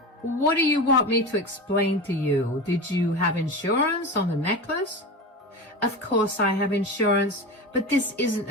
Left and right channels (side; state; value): both; normal; correlation 0.26